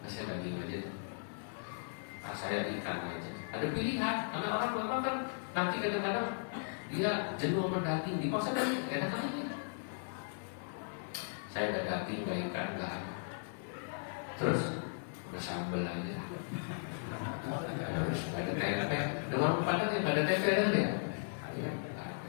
Saya daging aja. Saya ikan aja. Ada pilihan, karena orang memang kan nanti kadang-kadang dia jenuh mendaging di pasar dan enak aja. Saya ada daging, gak ikan, gak. Terus bersambel aja. Harus ada tempe. Di warung Padang yang ada tempe kan ya?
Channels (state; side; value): silent; right; digital silence